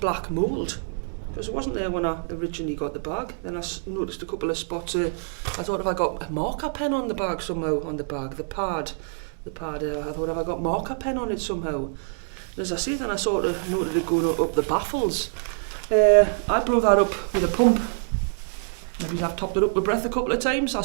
mould, because it wasn't there when I originally got the bag. Then I noticed a couple of spots. I thought, if I got a marker pen on the bag somehow, on the bag, the pad, I thought, if I got marker pen on it somehow. And as I see, then I sort of noted it going up the baffles. I blew that up with a pump. Maybe I've topped it up with breath a couple of times. I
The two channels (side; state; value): left; silent; digital silence